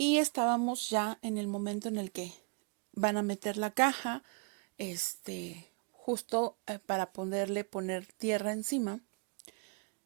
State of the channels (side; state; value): left; quieter; 35.5 dB